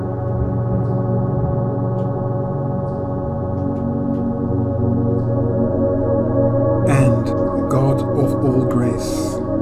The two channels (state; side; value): identical; both; correlation 1.00